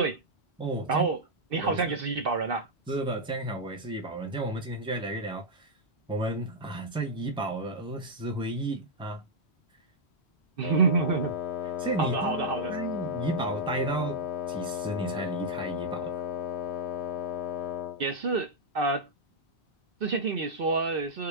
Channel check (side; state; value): both; normal; correlation -0.06